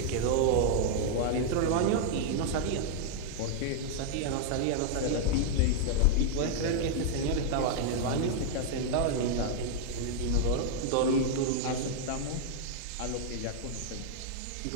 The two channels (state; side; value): different; both; correlation -0.01